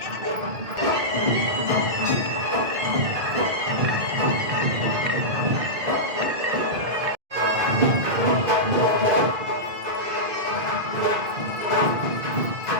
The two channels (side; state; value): left; late; 2.0 ms